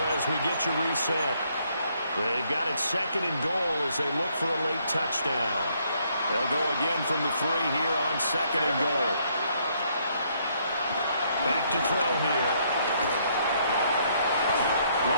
as we get you reset. They've got it 2nd and goal as they look for a late touchdown. They'll go again from the 3 here on 2nd and goal. Back to throw here.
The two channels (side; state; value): both; inverted; correlation -0.70